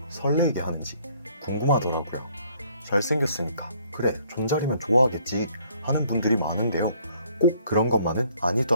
설레게 하는지 궁금하더라고요. 잘생겼으니까 그래 존잘이면 좋아하겠지 하는 분들이 많은데요. 꼭 그런 것만은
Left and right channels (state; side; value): inverted; both; correlation -0.63